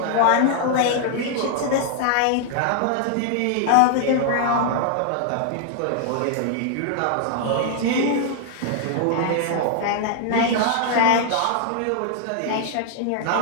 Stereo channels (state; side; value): different; both; correlation 0.00